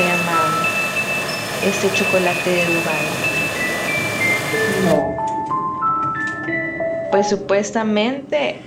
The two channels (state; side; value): identical; both; correlation 1.00